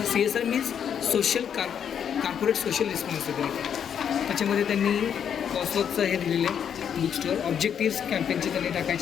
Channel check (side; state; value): right; quieter; 8.3 dB